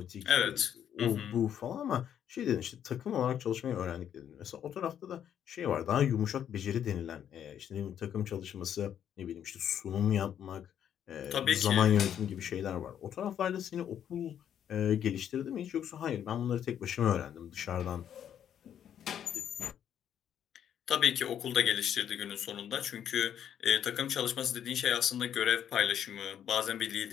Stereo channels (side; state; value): right; quieter; 9.5 dB